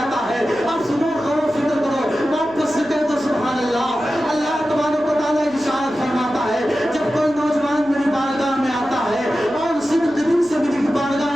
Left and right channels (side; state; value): right; noise; hum, 24 dB below the sound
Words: ہے، اب سنو غور و فکر کرو، واپس سے کہہ دو سبحان اللہ۔ اللہ تبارک و تعالیٰ ارشاد فرماتا ہے جب کوئی نوجوان میری بارگاہ میں آتا ہے اور صدق دل سے میری بارگاہ